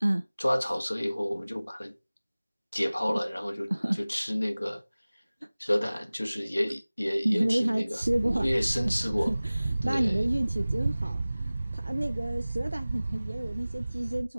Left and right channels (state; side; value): inverted; both; correlation -0.98